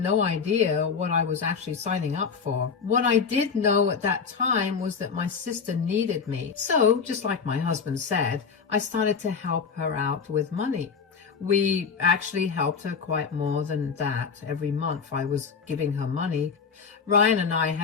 idea what I was actually signing up for. What I did know at that time was that my sister needed me. So, just like my husband said, I started to help her out with money. We actually helped her quite more than that. Every month I was giving her money. Ryan and I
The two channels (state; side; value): quieter; right; 5.8 dB